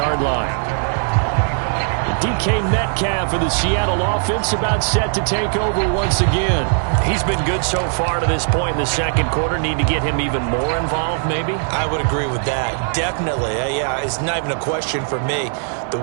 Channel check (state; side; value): silent; left; 55 dB below the other